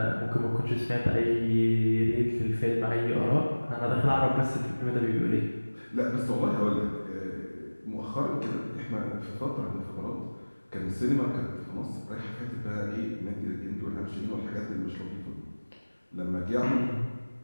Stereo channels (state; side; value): inverted; both; correlation -1.00